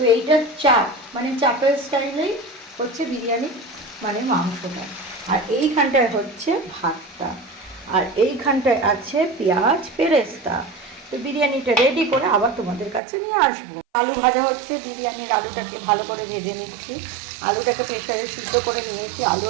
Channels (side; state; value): left; drops out; at 13.0 s